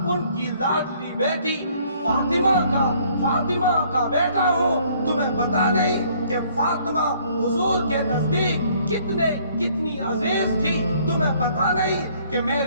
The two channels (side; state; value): both; inverted; correlation -0.61